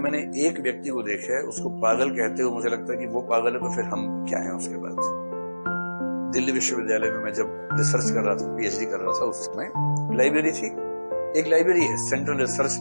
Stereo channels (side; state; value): both; inverted; correlation -1.00